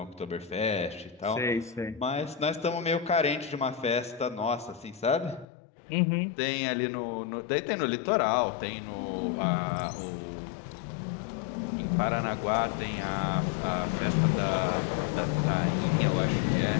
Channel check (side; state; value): right; drops out; at 5.5 s